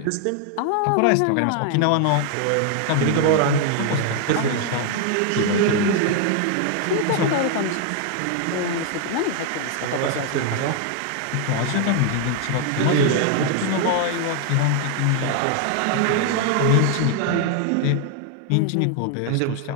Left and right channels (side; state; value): both; different; correlation 0.00